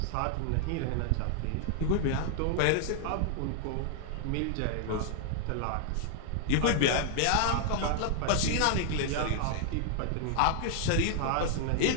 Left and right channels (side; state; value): both; different; correlation 0.00